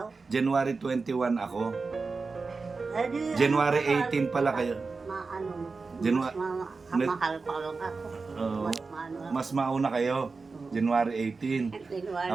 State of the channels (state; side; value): quieter; left; 4.3 dB